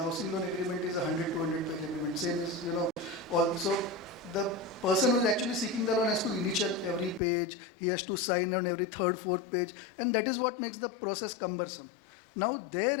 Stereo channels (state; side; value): drops out; right; at 7.2 s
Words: loan agreement is a 200-page agreement. Same is, also the person who is actually seeking the loan has to initial every page, he has to sign on every third, fourth page, and that is what makes the process cumbersome. Now there,